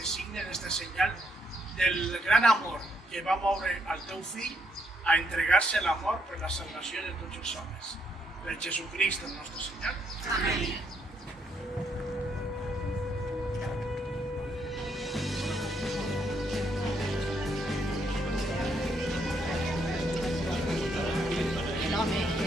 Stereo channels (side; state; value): both; normal; correlation 0.74